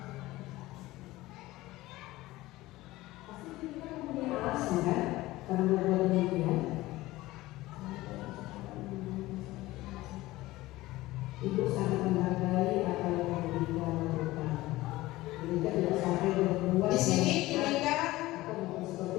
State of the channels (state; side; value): quieter; right; 18.2 dB